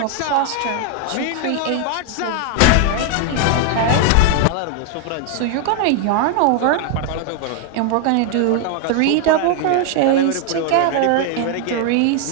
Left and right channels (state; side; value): different; both; correlation 0.00